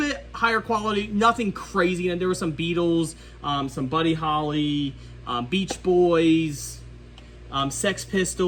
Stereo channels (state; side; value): identical; both; correlation 1.00